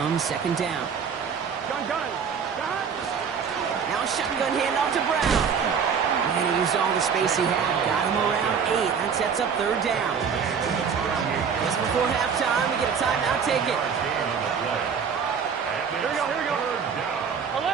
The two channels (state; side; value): quieter; left; 6.6 dB